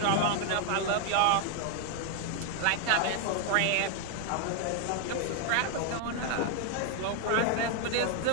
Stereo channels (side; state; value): both; different; correlation 0.00